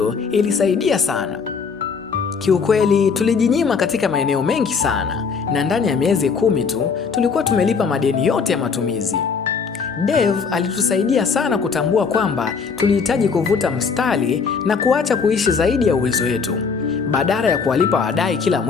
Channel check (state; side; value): quieter; right; 5.5 dB